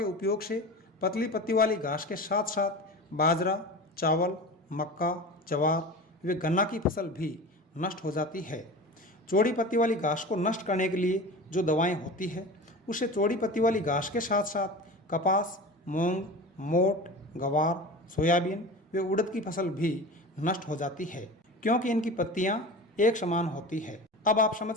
उपयोग से पतली पत्ती वाली घास के साथ साथ बाजरा, चावल, मक्का, जवार व गन्ना की फसल भी नष्ट हो जाती है। चौड़ी पत्ती वाली घास को नष्ट करने के लिए जो दवाएं होती है उससे चौड़ी पत्ती वाली घास के साथ साथ कपास, मूंग, मोट, गवार, सोयाबीन व उड़द की फसल भी नष्ट हो जाती है, क्योंकि इनकी पत्तियां एक समान होती है। अब आप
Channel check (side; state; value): both; normal; correlation 0.33